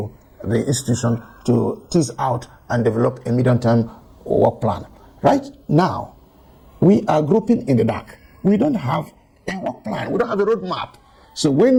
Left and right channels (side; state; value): both; identical; correlation 1.00